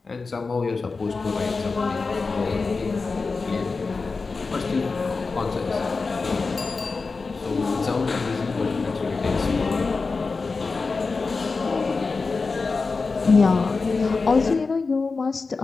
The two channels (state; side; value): quieter; right; 4.2 dB